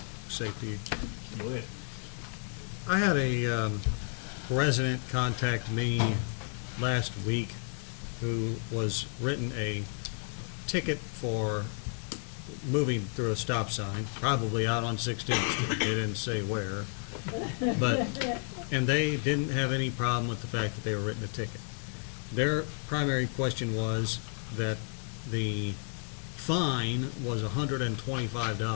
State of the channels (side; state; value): right; silent; 57 dB below the other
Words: safety. Go ahead. I had a resident contact me last week who was written a ticket for moving through a stop sign, probably out on 16th Street. They didn't say where. And they didn't have any problem with the fact that they were written a ticket. Their primary question was that the fine was